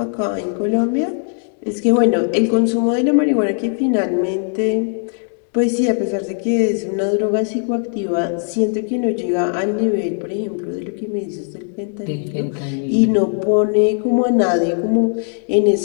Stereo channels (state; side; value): silent; right; 56 dB below the other